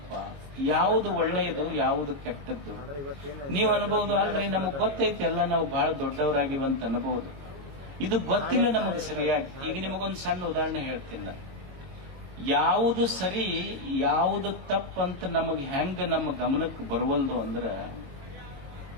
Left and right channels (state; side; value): late; left; 22 ms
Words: ಯಾವುದು ಒಳ್ಳೆಯದು ಯಾವುದು ಕೆಟ್ಟದ್ದು. ನೀವು ಅನ್ಬಹುದು ಆದ್ರೆ ನಮಗ್ ಗೊತ್ತೈತಿ ಎಲ್ಲ ನಾವು ಬಹಳ ದೊಡ್ಡವರಾಗಿವಂತ ಅನ್ಬಹುದು. ಇದು ಗೊತ್ತಿಲ್ಲ ನಮಗೆ ಸರಿಯಾಗಿ. ಈಗ ನಿಮಗೊಂದು ಸಣ್ಣ ಉದಾಹರಣೆ ಹೇಳ್ತೀನಿ. ಯಾವುದು ಸರಿ ಯಾವುದು ತಪ್ಪಂತ ನಮಗೆ ಹೆಂಗ ನಮ್ಮ ಗಮನಕ್ಕೆ ಬರುವಲ್ದು ಅಂದ್ರೆ,